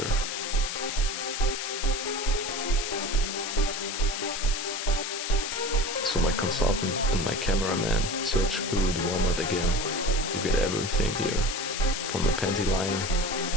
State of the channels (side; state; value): left; noise; hiss, 4 dB below the sound